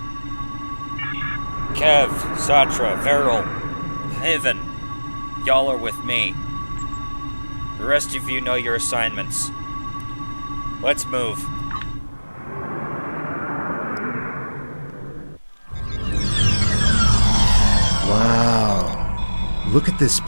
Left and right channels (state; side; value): inverted; both; correlation -1.00